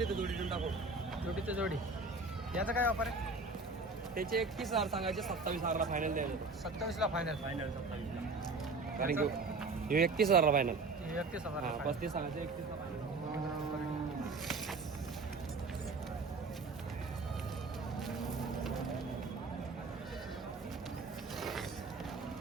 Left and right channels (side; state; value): left; quieter; 3.8 dB